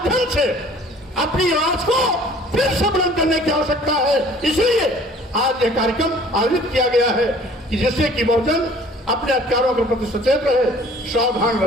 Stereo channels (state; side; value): normal; both; correlation 0.52